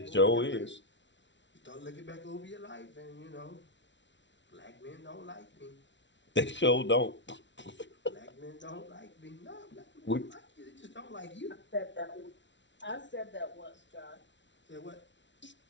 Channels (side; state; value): right; late; 0.53 ms